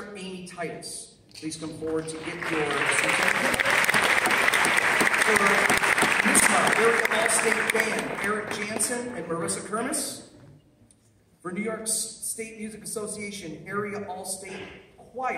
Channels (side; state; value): both; identical; correlation 1.00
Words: Amy Titus. Please come forward to get your certificate. For NISMA, Area All-State Band, Eric Jansen and Marissa Kermis. For New York State Music Association, Area All-State